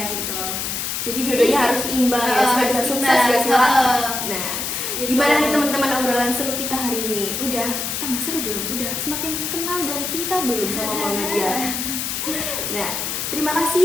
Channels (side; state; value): left; noise; hiss, 3 dB below the sound